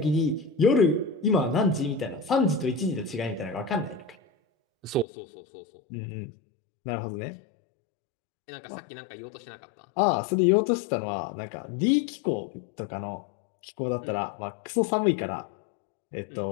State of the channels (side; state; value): right; drops out; at 5.1 s